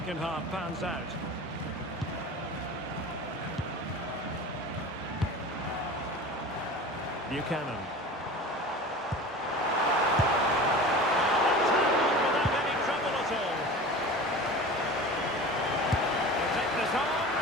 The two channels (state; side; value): normal; both; correlation 0.35